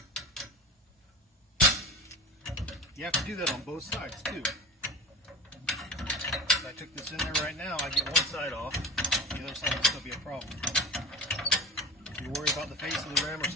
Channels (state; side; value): normal; both; correlation 0.31